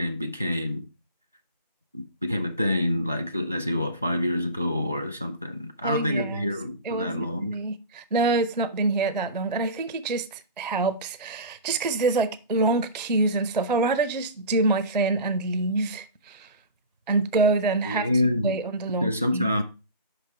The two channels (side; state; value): both; inverted; correlation -0.33